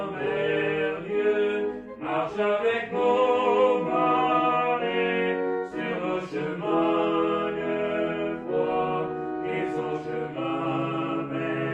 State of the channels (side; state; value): both; identical; correlation 1.00